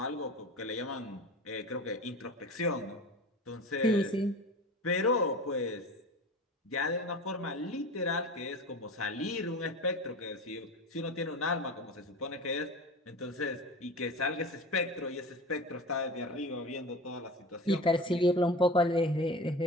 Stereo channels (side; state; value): both; normal; correlation 0.33